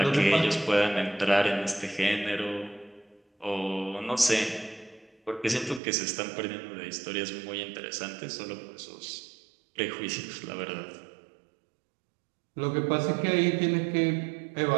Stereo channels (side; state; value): left; drops out; at 5.8 s